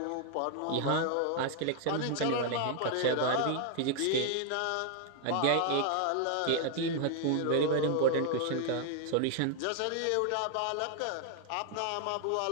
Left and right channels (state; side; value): different; both; correlation 0.00